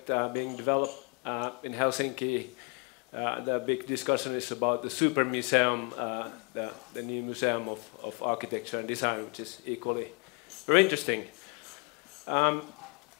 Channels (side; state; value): right; quieter; 34.8 dB